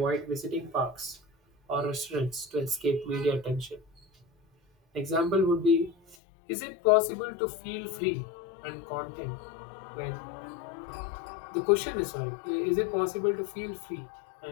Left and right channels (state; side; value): drops out; right; at 6.2 s